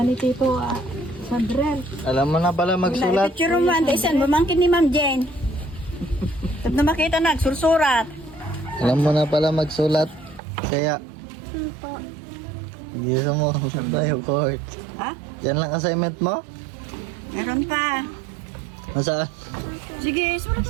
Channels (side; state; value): left; drops out; at 10.4 s